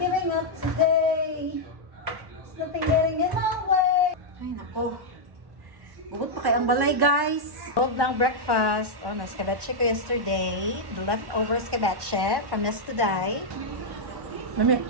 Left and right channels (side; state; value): left; late; 1.1 ms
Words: up today. There's nothing getting in my way. Ay nako. Bukod pa kay ang balay guys. Huwag ng breakfast. Oh, na-escabeche ko yesterday. The leftover escabeche from yesterday. Mami.